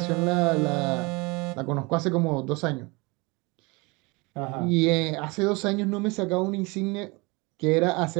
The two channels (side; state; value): left; quieter; 26.6 dB